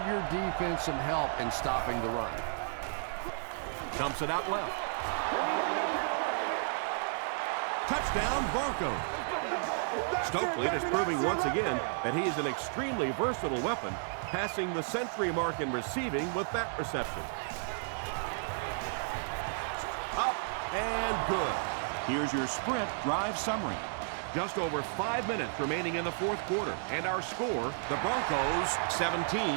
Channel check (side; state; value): left; silent; digital silence